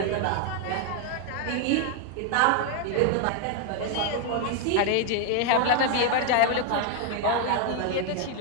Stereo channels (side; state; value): both; different; correlation 0.01